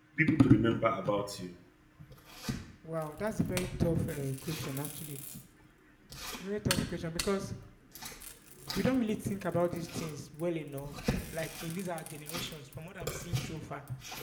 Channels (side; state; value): both; identical; correlation 1.00